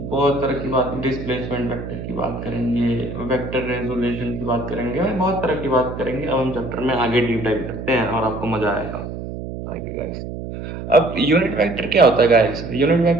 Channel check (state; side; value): noise; right; hum, 8 dB below the sound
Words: तरह की बात, डिस्प्लेसमेंट वेक्टर की बात करेंगे, वेक्टर रेजोल्यूशन की बात करेंगे, बहुत तरह की बात करेंगे। अब हम चैप्टर में आगे डीप डाइव करते हैं और आपको मजा आएगा आगे गाइस। अब यूनिट वेक्टर क्या होता है गाइस, यूनिट